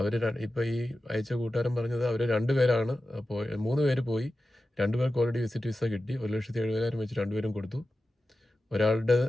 ഇപ്പോൾ ഈ അയച്ച കൂട്ടുകാരൻ പറഞ്ഞത് അവർ 2 പേരാണ് 3 പേര് പോയി, 2 പേർക്ക് ഓൾറെഡി വിസിറ്റ് വിസ കിട്ടി. 1,70,000 വെച്ച് 2 പേരും കൊടുത്തു. ഒരാളുടെ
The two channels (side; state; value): both; normal; correlation 0.93